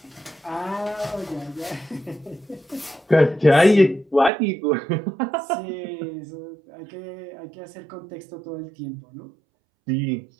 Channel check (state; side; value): drops out; left; at 4.3 s